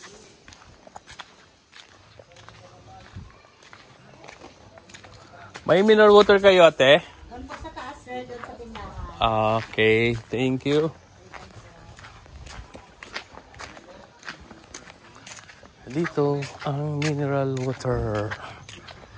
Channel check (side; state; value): both; identical; correlation 1.00